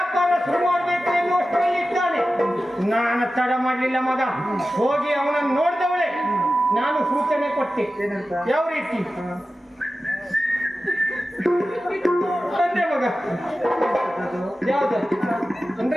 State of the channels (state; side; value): normal; both; correlation 0.94